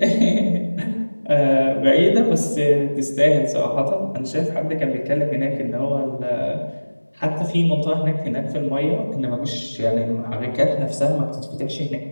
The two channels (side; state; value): both; inverted; correlation -1.00